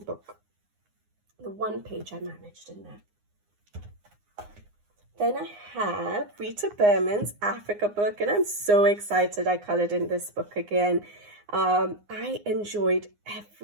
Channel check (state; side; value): late; left; 9.7 ms